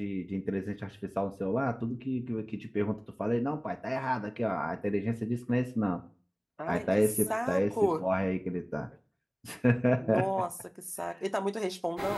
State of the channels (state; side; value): identical; both; correlation 1.00